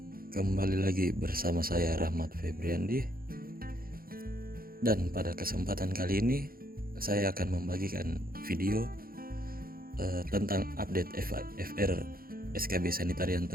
Kembali lagi bersama saya Rahmat Febriandi. Dan pada kesempatan kali ini saya akan membagikan video tentang update FR SKB Sanitarian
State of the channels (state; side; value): late; left; 0.42 ms